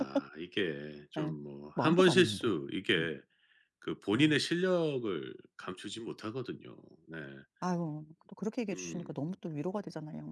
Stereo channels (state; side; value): identical; both; correlation 1.00